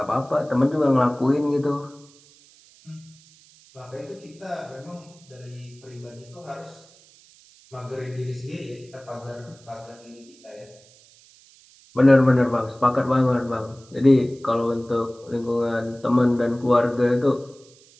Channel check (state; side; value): noise; right; hiss, 27 dB below the sound